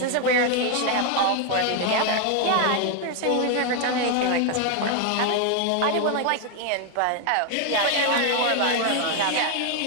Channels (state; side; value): different; both; correlation 0.01